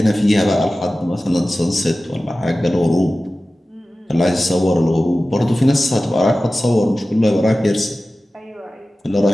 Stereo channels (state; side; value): normal; both; correlation 0.96